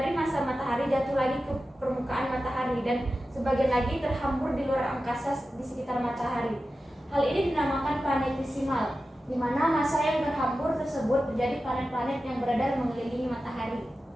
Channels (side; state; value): both; normal; correlation 0.93